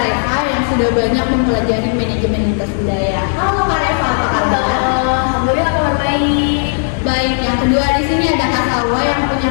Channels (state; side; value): silent; right; 67 dB below the other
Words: Reva yang sudah banyak mempelajari manajemen lintas budaya. Halo Kak Reva, apa kabar? Alhamdulillah kabar baik. Baik, yang kedua di sini ada Kak Salwa yang punya